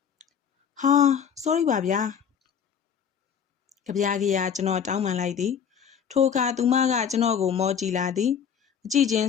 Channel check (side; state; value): right; quieter; 7.7 dB